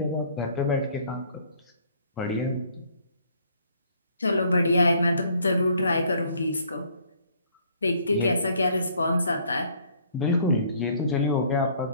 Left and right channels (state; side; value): inverted; both; correlation -0.61